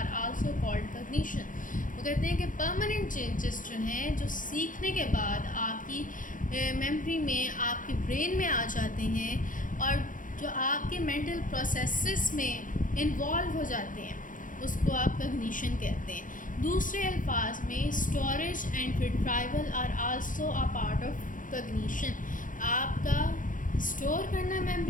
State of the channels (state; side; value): late; right; 0.38 ms